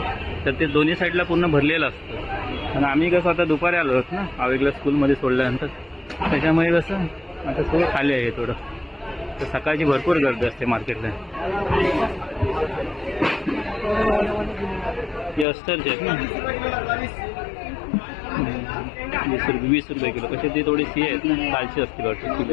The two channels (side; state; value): right; drops out; at 15.5 s